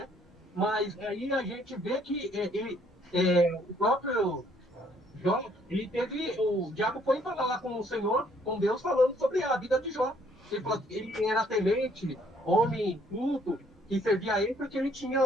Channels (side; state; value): both; normal; correlation 0.65